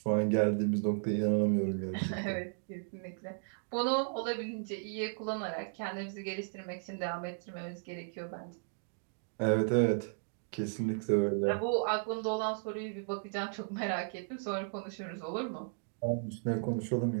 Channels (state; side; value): silent; left; digital silence